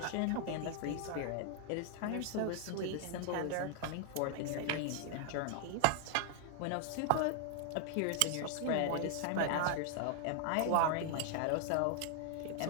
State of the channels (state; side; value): different; both; correlation 0.00